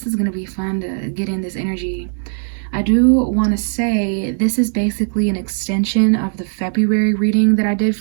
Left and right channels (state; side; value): silent; left; 67 dB below the other